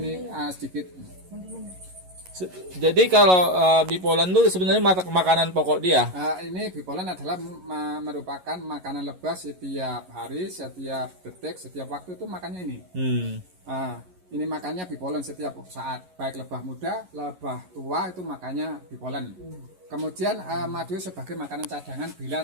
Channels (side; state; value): left; late; 11 ms